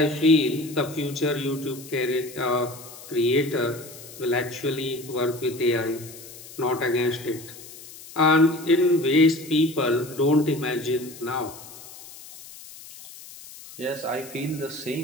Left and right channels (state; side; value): noise; left; hiss, 17 dB below the sound